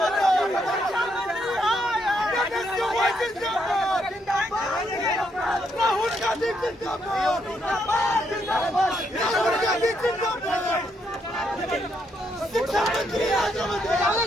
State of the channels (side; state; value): both; normal; correlation 0.76